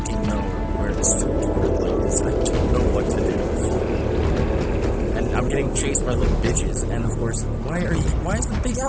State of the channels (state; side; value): identical; both; correlation 1.00